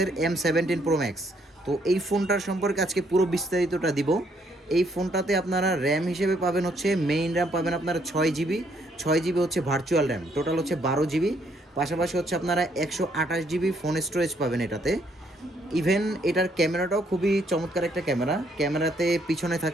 M17 Pro Max। তো এই ফোনটার সম্পর্কে আজকে পুরো বিস্তারিতটা দিব। এই ফোনটাতে আপনারা র্যাম হিসেবে পাবেন হচ্ছে মেইন র্যাম পাবেন আপনারা 6 জিবি, 6 জিবি হচ্ছে ভার্চুয়াল র্যাম, টোটাল হচ্ছে 12 জিবি। পাশাপাশি হচ্ছে আপনারা 128 জিবি ফোন স্টোরেজ পাবেন এটাতে। ইভেন এটার ক্যামেরাটাও খুবই চমৎকার একটা ক্যামেরাতে পিছনে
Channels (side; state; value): both; normal; correlation 0.70